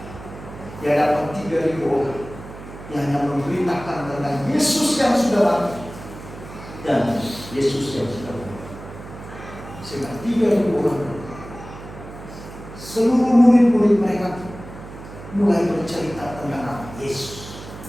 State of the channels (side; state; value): right; noise; hum, 14 dB below the sound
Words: dia dapat 3.000 orang yang hanya memberitakan tentang Yesus yang sudah mati dan Yesus yang sudah mati. Sehingga 3.000 orang, seluruh murid-murid mereka mulai bercerita tentang Yesus.